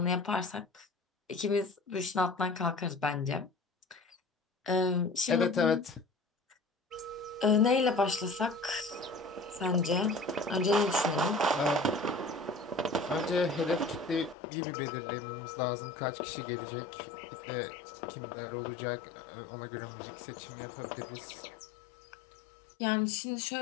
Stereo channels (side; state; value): right; drops out; at 14.4 s